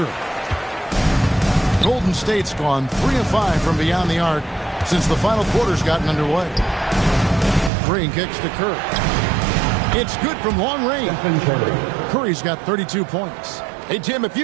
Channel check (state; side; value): drops out; left; at 7.7 s